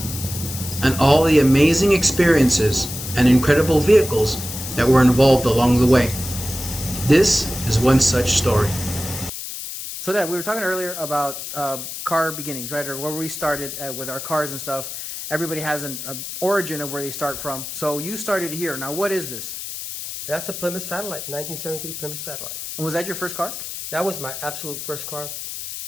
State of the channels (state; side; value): noise; left; hiss, 8 dB below the sound